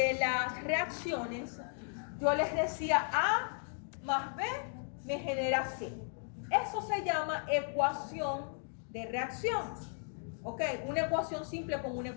las reacciones, yo les decía A más B me genera C. Eso se llama ecuación de reacción. ¿Ok? Una ecuación simple como una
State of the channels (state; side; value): silent; right; 54 dB below the other